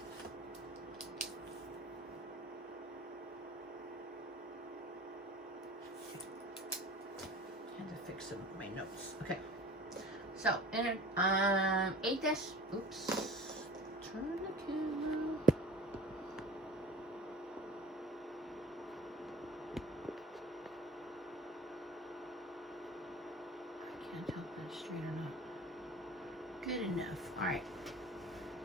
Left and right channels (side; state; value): both; normal; correlation 0.41